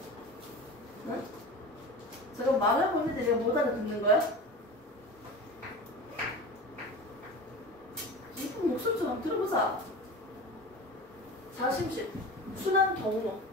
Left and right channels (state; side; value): normal; both; correlation 0.32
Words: 응? 제가 말하고 있는데 내가 못 알아듣는 거야? 이쁜 목소리 좀 한번 들어보자. 좌심실. 순환 경로.